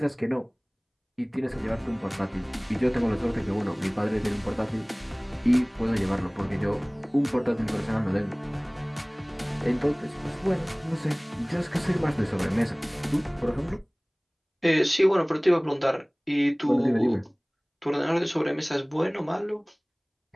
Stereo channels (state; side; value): identical; both; correlation 1.00